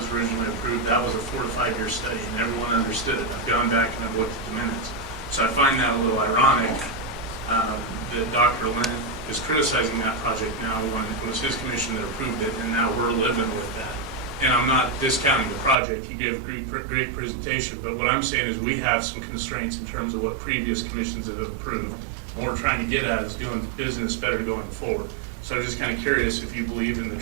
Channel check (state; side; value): drops out; left; at 15.8 s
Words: originally approved, that was a 4 to 5 year study, and everyone understood it. I've gone back and I've looked at the minutes. So I find that a little ironic that Dr. Lynn is criticizing that project now when it was his commission that approved it, and now we're living with that. And I'm not discounting the project. He gave a great presentation, but what I'm saying is we have some constraints in terms of what previous commissions have approved. What we're trying to get at is doing business better going forward. So I'm just kind of curious if you believe in the